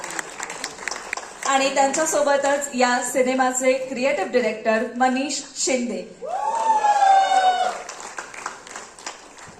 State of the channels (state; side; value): identical; both; correlation 1.00